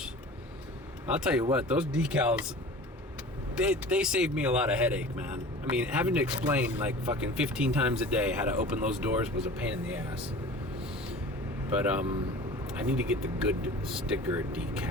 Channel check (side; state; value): both; normal; correlation 0.40